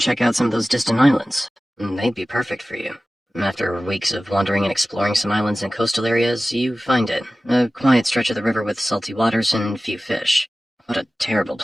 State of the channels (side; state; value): both; normal; correlation 0.96